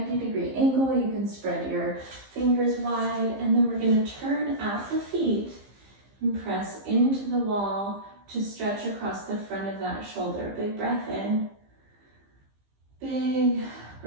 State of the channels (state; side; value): late; left; 15 ms